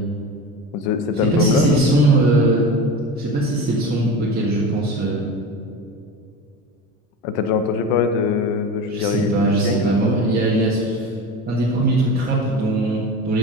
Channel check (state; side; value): normal; both; correlation 0.29